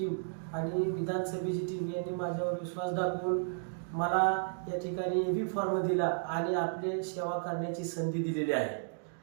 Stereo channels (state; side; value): silent; left; digital silence